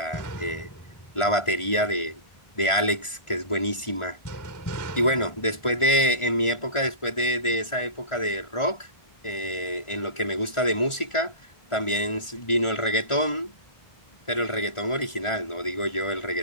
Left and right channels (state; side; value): late; right; 1.4 ms